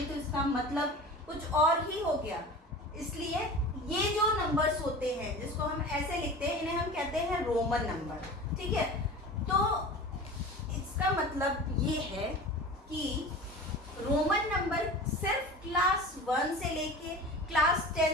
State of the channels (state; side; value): normal; both; correlation 0.35